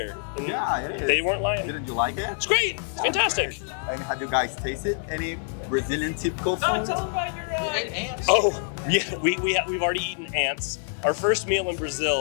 And Yeah, it is. they weren't lying. Didn't you like it? It's great. It's fantastic. And have you guys tasted any Brazilian typical food? Tell them about your ants. Oh, yeah, we've already eaten ants. Our first meal in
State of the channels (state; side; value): silent; right; 61 dB below the other